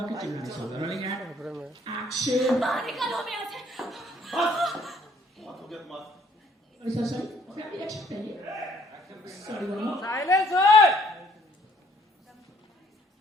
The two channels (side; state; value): both; normal; correlation 0.62